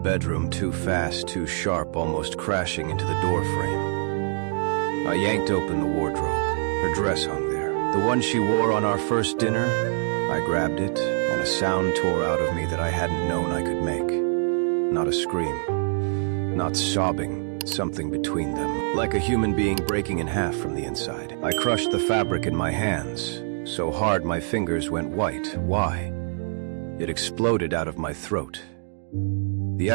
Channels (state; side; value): silent; left; 62 dB below the other